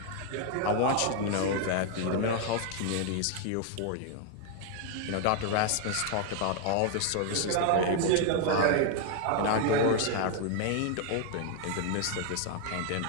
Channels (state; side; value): different; both; correlation 0.00